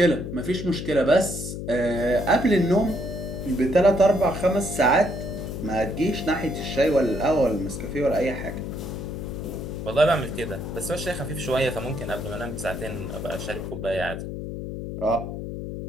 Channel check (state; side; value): noise; left; hum, 6 dB below the sound